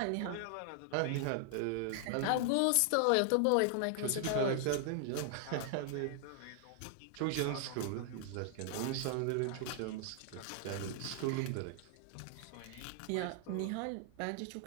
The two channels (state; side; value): different; both; correlation 0.00